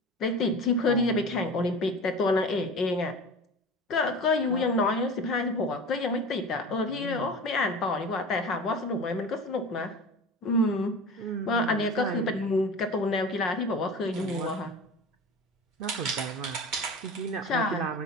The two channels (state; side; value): normal; both; correlation 0.34